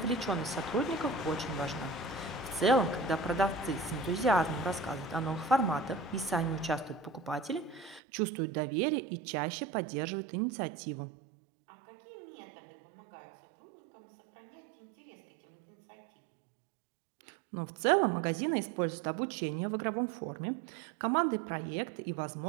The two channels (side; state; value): left; drops out; at 8.0 s